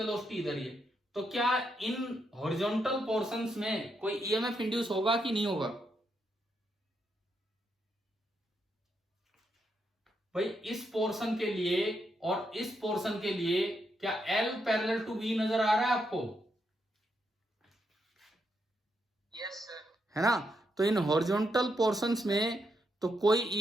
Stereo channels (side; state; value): both; normal; correlation 0.80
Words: इधर ही है, तो क्या इन हॉरिजॉन्टल पोर्शंस में कोई ईएमएफ इंड्यूस होगा कि नहीं होगा? भाई इस पोर्शन के लिए और इस पोर्शन के लिए क्या L पैरेलल टू V नजर आ रहा है आपको? Yes sir. है ना? तो इन हॉरिजॉन्टल पोर्शंस में तो कोई